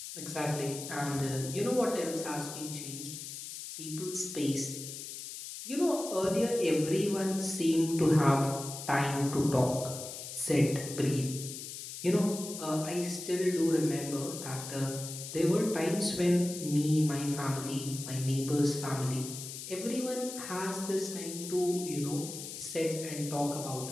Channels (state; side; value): noise; left; hiss, 9 dB below the sound